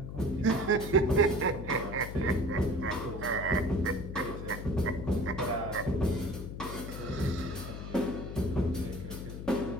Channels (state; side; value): noise; left; hum, 8 dB below the sound